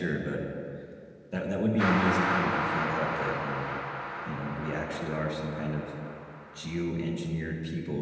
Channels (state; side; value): identical; both; correlation 1.00